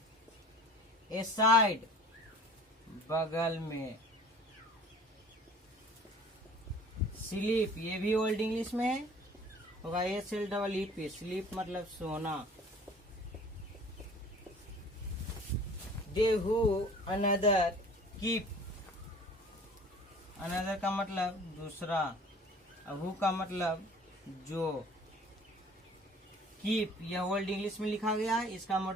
ए साइड बगल में। स्लीप, ये भी ओल्ड इंग्लिश में होगा, SLEEP। स्लीप मतलब सोना। दे हु अनदर कीप, अनदर का मतलब दूसरा, हु का मतलब जो। कीप यह ओल्ड इंग्लिश में लिखा गया है, इसका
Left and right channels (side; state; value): both; normal; correlation 0.47